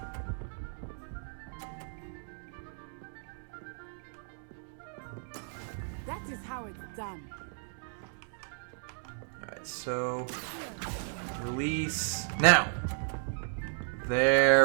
That is how it's done. Alright, so release now.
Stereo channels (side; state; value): left; silent; digital silence